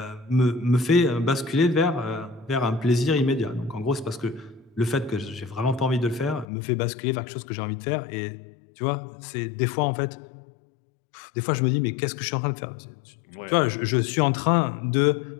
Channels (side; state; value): right; drops out; at 6.5 s